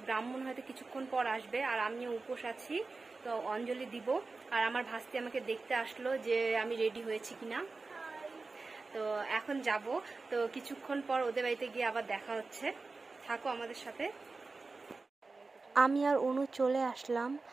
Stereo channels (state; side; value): quieter; left; 3.8 dB